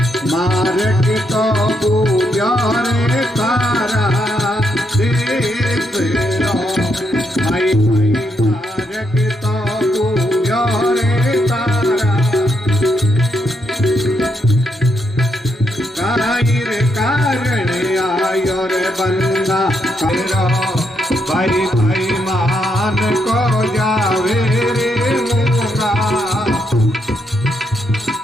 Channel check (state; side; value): normal; both; correlation 0.78